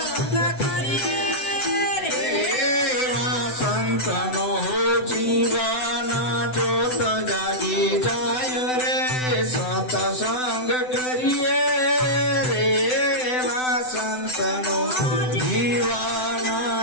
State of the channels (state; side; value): late; right; 7.9 ms